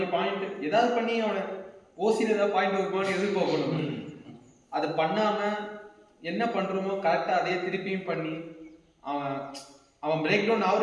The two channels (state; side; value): identical; both; correlation 1.00